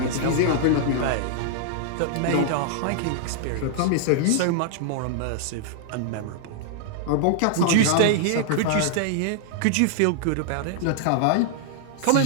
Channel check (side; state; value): both; different; correlation -0.01